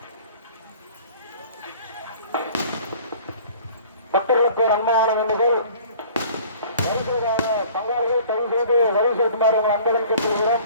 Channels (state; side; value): inverted; both; correlation -0.49